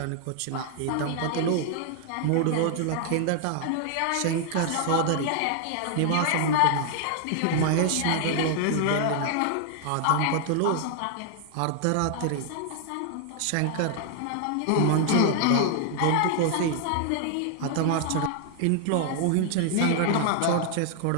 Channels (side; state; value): both; different; correlation 0.00